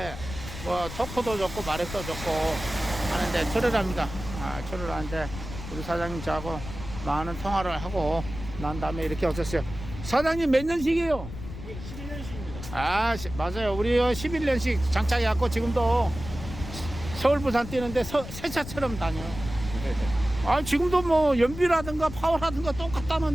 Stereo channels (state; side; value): noise; left; rumble, 10 dB below the sound